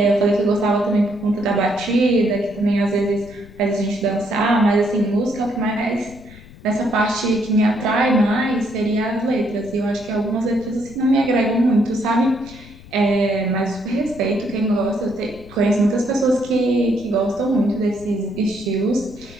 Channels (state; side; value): noise; left; rumble, 20 dB below the sound